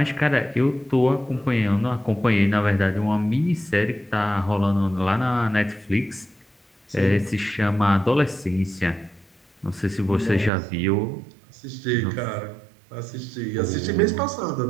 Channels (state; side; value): drops out; left; at 10.5 s